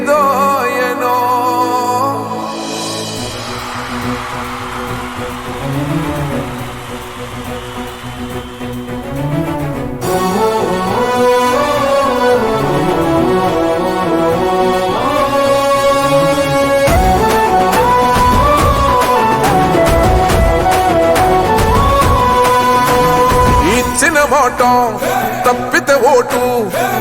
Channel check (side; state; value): both; identical; correlation 1.00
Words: మాట తప్పితే ఓటు